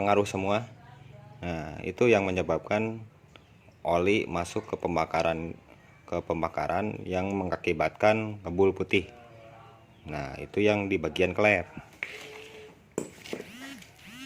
semua. Nah, itu yang menyebabkan oli masuk ke pembakaran yang mengakibatkan ngebul putih. Nah, itu yang di bagian klep.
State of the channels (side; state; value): both; identical; correlation 1.00